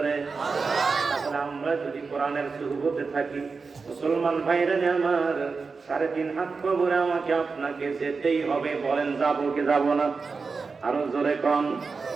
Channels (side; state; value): left; quieter; 4.6 dB